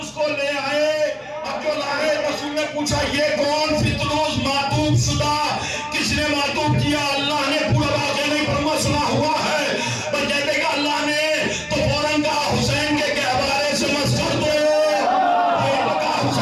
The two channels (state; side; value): identical; both; correlation 1.00